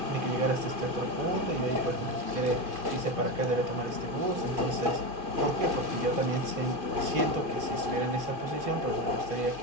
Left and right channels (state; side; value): late; left; 2.5 ms